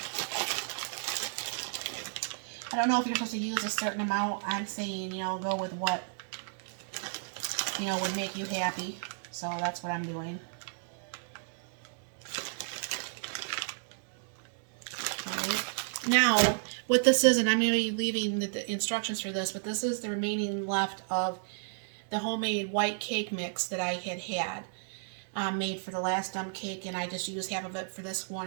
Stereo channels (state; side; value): silent; left; digital silence